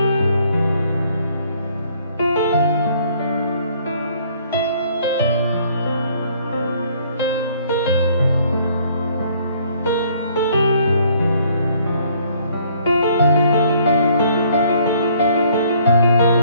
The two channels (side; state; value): both; inverted; correlation -0.62